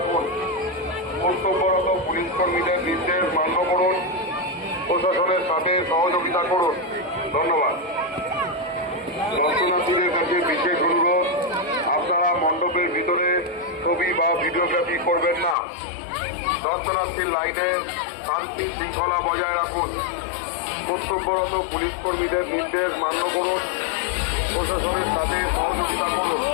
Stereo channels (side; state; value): right; drops out; at 15.6 s